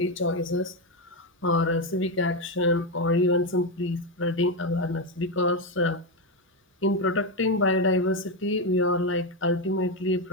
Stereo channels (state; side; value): normal; both; correlation 0.09